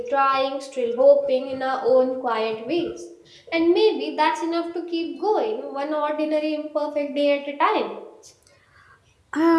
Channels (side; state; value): both; identical; correlation 1.00